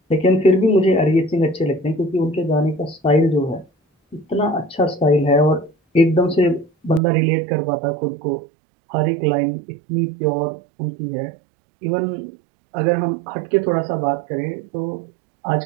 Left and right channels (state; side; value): drops out; left; at 7.0 s